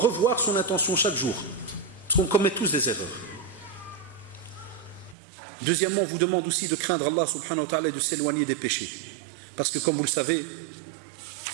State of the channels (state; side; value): drops out; left; at 5.2 s